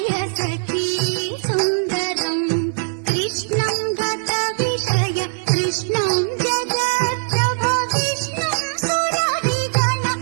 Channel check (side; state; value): left; silent; digital silence